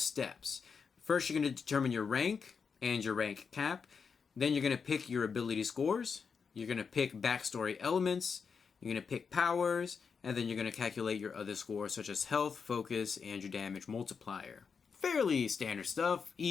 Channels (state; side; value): quieter; right; 5.8 dB